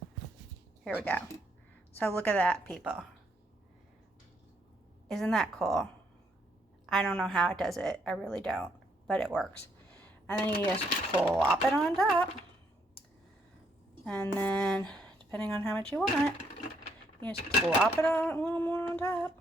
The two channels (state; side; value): normal; both; correlation 0.73